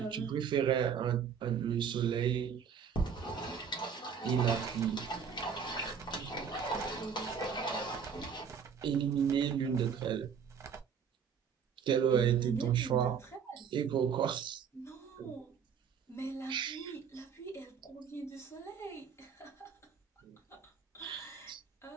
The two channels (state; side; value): quieter; left; 7.0 dB